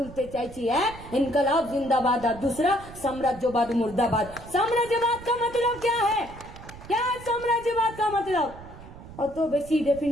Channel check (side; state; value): right; noise; rumble, 16 dB below the sound